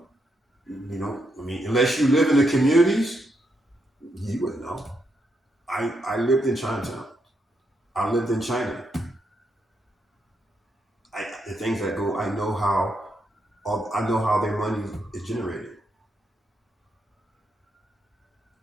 Unless you live in the communities, you wouldn't know. I lived in Chinatown. I lived in China. The things that go, I know how their money is generated.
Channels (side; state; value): both; normal; correlation 0.80